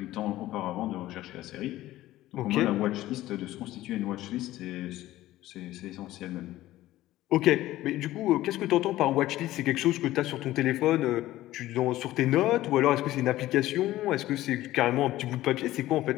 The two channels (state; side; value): quieter; right; 15.6 dB